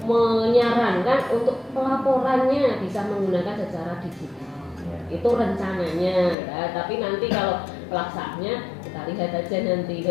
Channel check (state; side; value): drops out; right; at 6.4 s